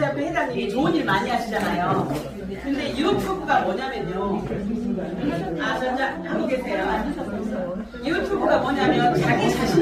회장님이 좋은 일 많이 하시잖아요. 근데 유튜브가 뭐냐면요. 전자 하고 계세요. 유튜브가 뭐냐면 자기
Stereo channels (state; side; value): identical; both; correlation 1.00